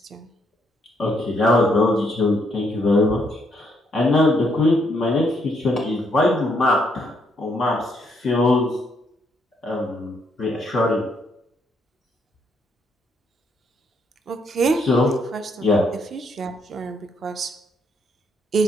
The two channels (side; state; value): both; normal; correlation 0.73